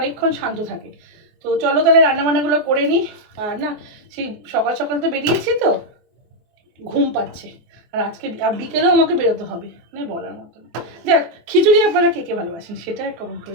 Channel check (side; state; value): left; late; 24 ms